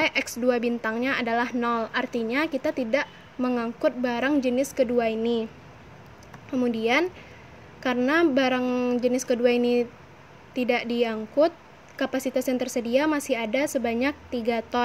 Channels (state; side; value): identical; both; correlation 1.00